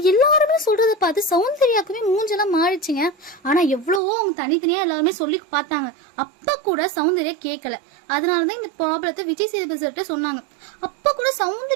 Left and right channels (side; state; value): left; drops out; at 4.0 s